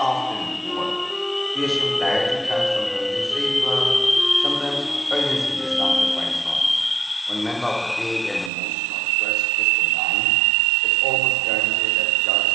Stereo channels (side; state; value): left; drops out; at 8.5 s